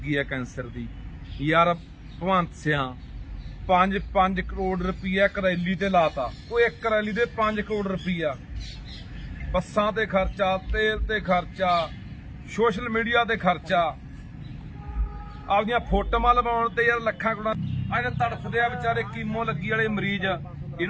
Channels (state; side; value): identical; both; correlation 1.00